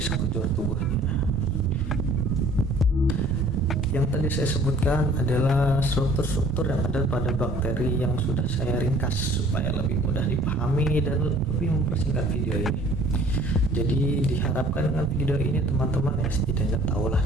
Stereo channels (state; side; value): noise; right; rumble, 9 dB below the sound